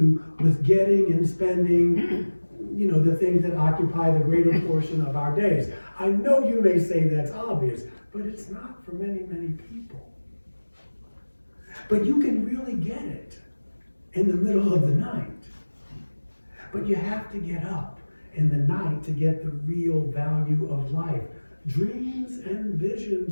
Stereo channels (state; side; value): inverted; both; correlation -1.00